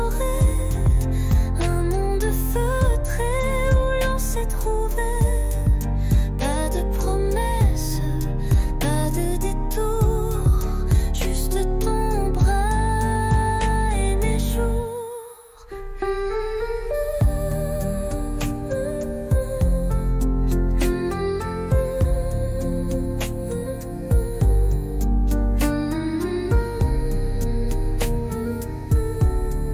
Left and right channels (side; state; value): both; identical; correlation 1.00